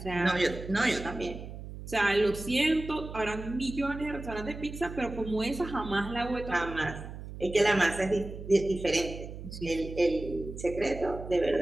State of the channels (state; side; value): noise; right; hum, 11 dB below the sound